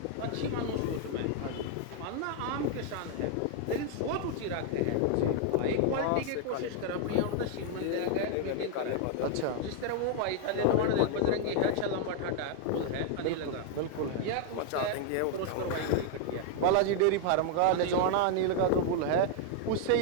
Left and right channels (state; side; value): different; both; correlation 0.00